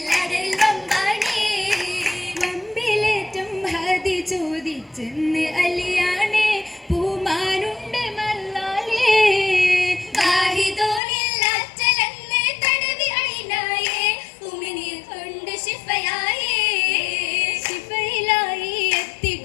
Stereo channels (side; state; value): right; drops out; at 11.0 s